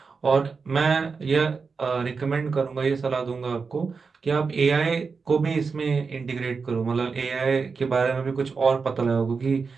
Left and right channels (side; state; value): left; quieter; 5.0 dB